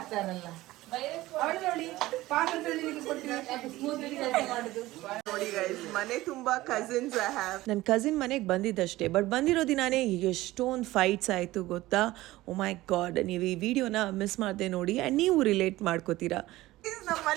ನೋಡಿ ಗೈಸ್, ಮನೆ ತುಂಬಾ ಕಸಿನ್ಸ್. ನನ್ನ ಕಸಿನ್ ಮನೆಗೆ ಬಂದಿದ್ದಷ್ಟೇ, ಬಟ್ ಬಂದಿರೋ ದಿನಾನೇ ಎಷ್ಟೊಂದು ಫೈಟ್ಸ್ ಆಯಿತು ಗೊತ್ತಾ. ಓ ಮೈ ಗಾಡ್, ನೀವು ಈ ವಿಡಿಯೋನ ಮಿಸ್ ಮಾಡದೆ ನೋಡಿ ಆ್ಯಂಡ್ ನೀವು ರಿಲೇಟ್ ಮಾಡ್ಕೋತೀರಾ. ನಮ್ಮ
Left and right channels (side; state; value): left; quieter; 17.5 dB